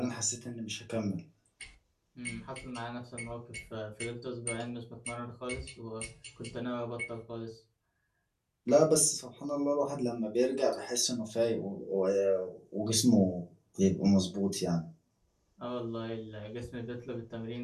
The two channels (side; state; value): both; identical; correlation 1.00